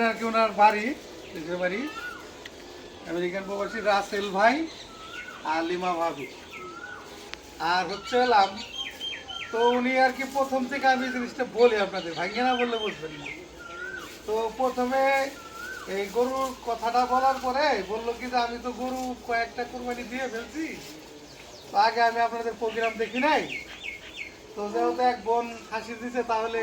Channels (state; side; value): identical; both; correlation 1.00